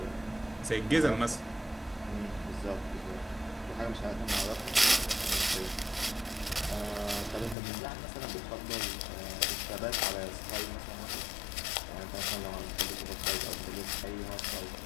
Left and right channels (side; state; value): right; drops out; at 7.6 s